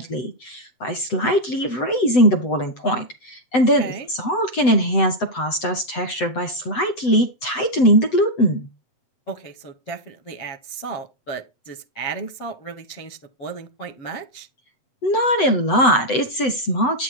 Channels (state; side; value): late; right; 7.9 ms